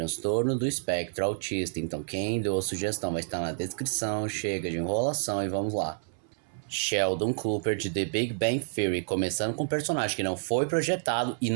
do espectro autista. Então quem deu a sugestão vai estar na descrição, chega de enrolação e vamos lá. Sheldon Cooper de The Big Bang Theory, começando com um personagem que não foi projetado e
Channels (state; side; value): silent; left; 58 dB below the other